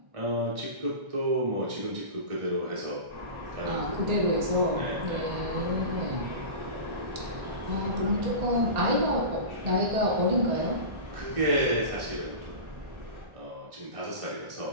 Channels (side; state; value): left; late; 1.4 ms